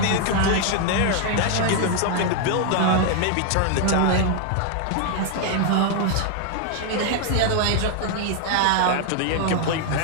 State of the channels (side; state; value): both; different; correlation 0.00